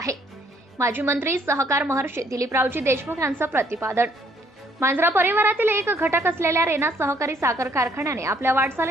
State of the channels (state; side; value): normal; both; correlation 0.65